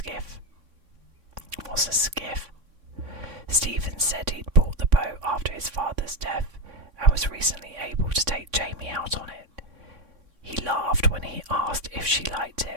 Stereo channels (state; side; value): late; left; 3.6 ms